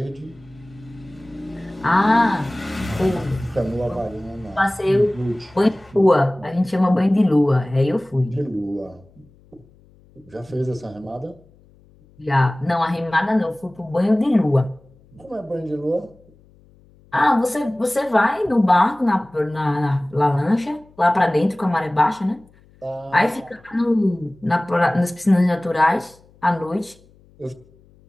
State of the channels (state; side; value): noise; left; hum, 29 dB below the sound